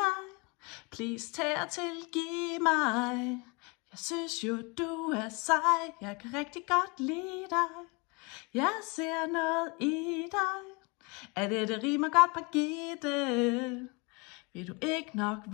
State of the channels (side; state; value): right; quieter; 29.4 dB